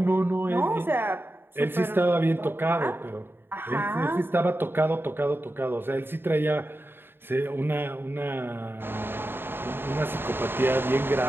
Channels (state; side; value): late; left; 0.10 ms